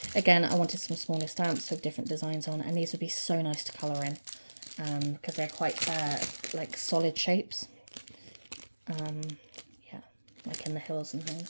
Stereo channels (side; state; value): both; inverted; correlation -1.00